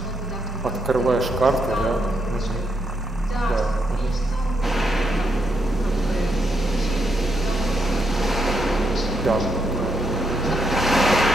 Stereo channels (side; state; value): both; normal; correlation 0.79